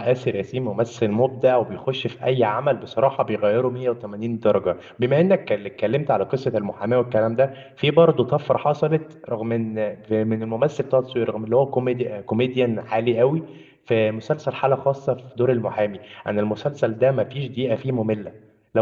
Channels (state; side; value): identical; both; correlation 1.00